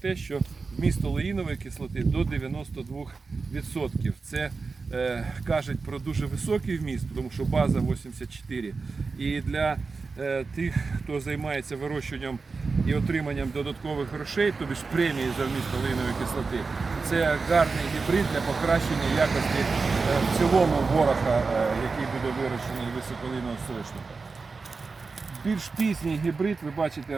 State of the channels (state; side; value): quieter; left; 4.4 dB